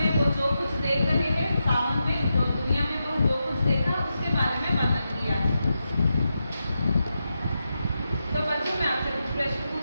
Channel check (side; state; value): both; inverted; correlation -0.88